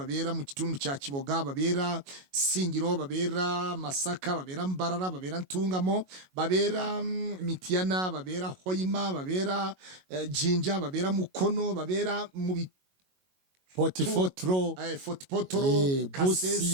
mu kitundu kya Kiboga, babera Singiro, babera Masaka, babera Mbarara, babera Ntungamo, babera Mitiana, babera Hoima, babera Jinja, babera Mukono, babera mu Potipotro Potipotro,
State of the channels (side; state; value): left; late; 22 ms